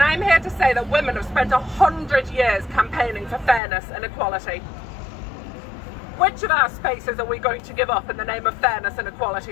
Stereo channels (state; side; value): drops out; right; at 3.6 s